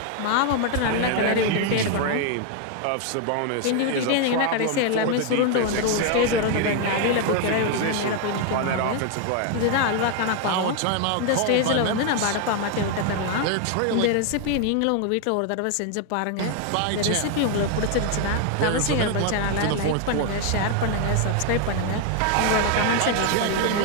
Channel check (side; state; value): both; different; correlation 0.00